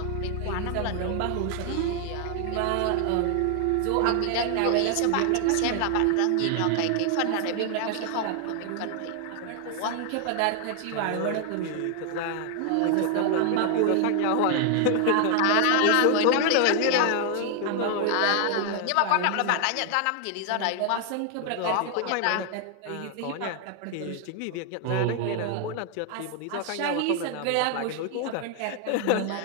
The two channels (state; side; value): different; both; correlation 0.00